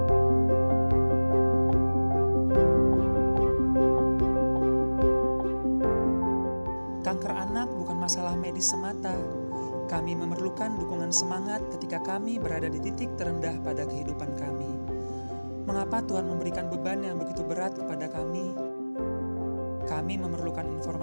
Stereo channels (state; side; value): inverted; both; correlation -1.00